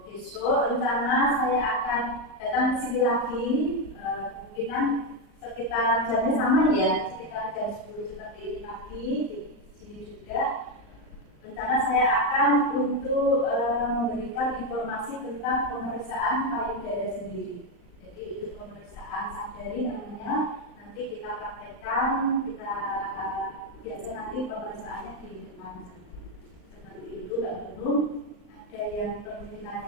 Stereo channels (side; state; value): right; late; 39 ms